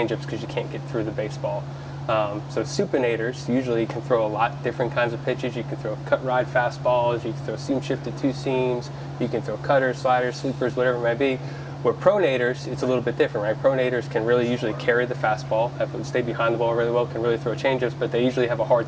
because you can't get through the baseball. So supinators usually can throw a lot different kinds of pitches. You can throw cut ride fastballs. You can throw seam shifted two seams. You can throw cutters, sliders, sweepers, whatever it might be. Where pronators, it's a little bit different, right? Pronators can really usually carry the fastball, stay behind the ball really well, can really throw changeups, but they usually have a hard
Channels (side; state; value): both; identical; correlation 1.00